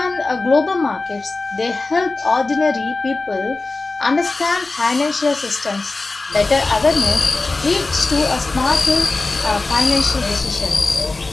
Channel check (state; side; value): quieter; right; 3.4 dB